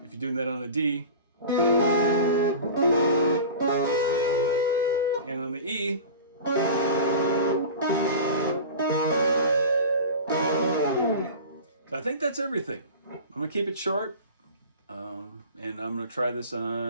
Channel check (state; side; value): inverted; both; correlation -0.35